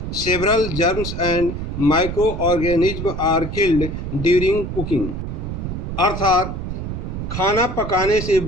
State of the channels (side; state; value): right; noise; rumble, 5 dB below the sound